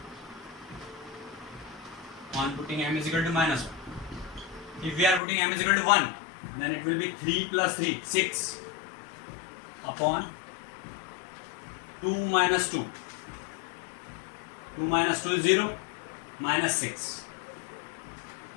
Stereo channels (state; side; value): drops out; right; at 5.2 s